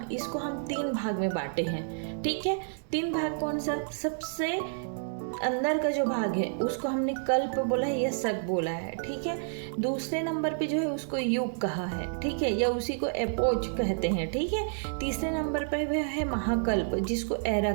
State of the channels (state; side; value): silent; left; digital silence